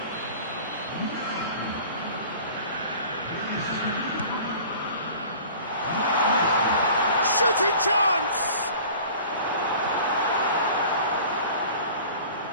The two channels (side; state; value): both; inverted; correlation -0.44